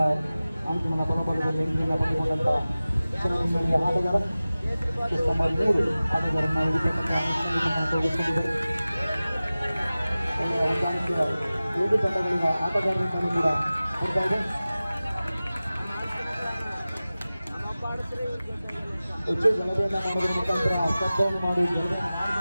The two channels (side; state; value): both; inverted; correlation -0.97